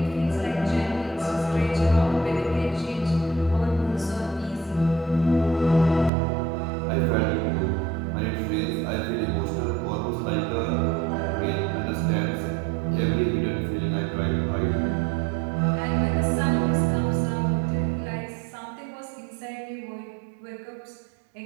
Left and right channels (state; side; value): drops out; left; at 6.1 s